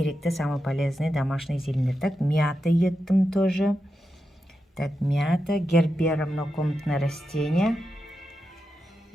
самые полезные домашний зелень. Так, мята еттім тоже. Так, мята, гербера, многокомнатное растение.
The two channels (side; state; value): both; normal; correlation 0.88